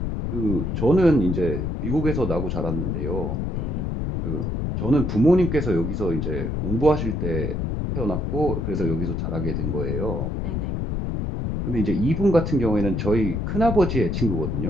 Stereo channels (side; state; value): left; noise; rumble, 1 dB below the sound